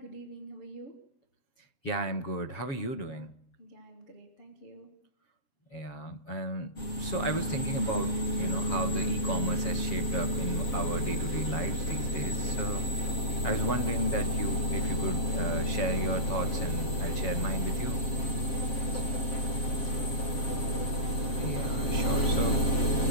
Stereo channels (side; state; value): right; late; 7.5 ms